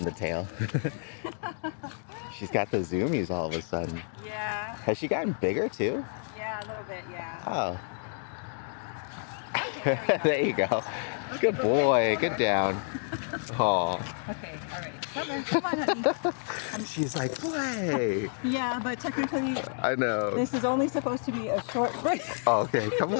the tail. She's got the zoomies all of a sudden. Yeah. Has she gotten bigger too? Yeah, a little bit, yeah. Oh. Okay, There you go. Good boy. Good down. Oh. Okay, all right. Come on, honey. She's like, play. Yeah, but technically, I know. this is only supposed to be a short break. Oh, okay, come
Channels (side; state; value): right; silent; digital silence